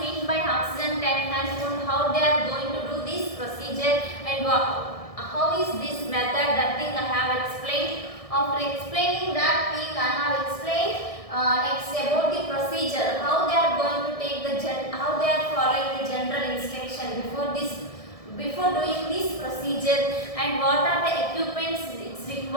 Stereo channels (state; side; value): late; right; 1.6 ms